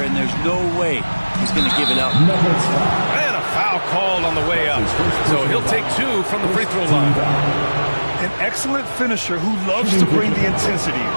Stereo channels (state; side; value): inverted; both; correlation -1.00